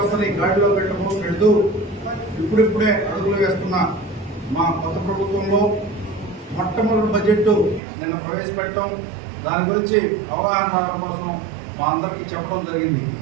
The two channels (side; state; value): left; drops out; at 7.8 s